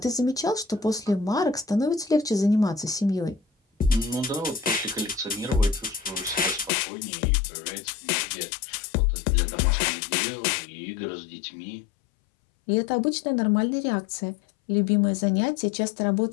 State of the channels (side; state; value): right; drops out; at 6.7 s